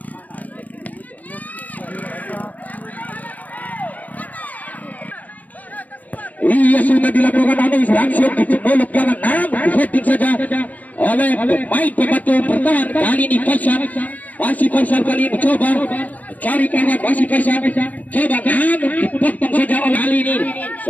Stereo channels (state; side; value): late; right; 0.075 ms